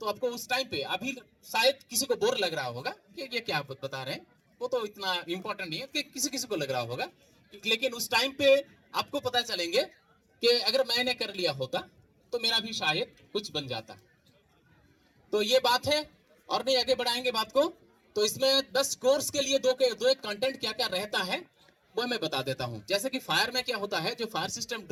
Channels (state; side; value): identical; both; correlation 1.00